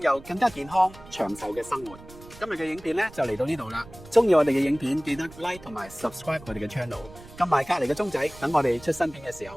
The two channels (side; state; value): right; noise; rumble, 19 dB below the sound